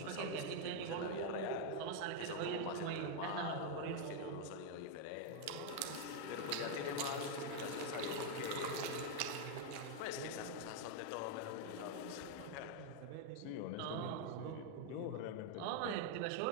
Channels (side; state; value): both; different; correlation 0.00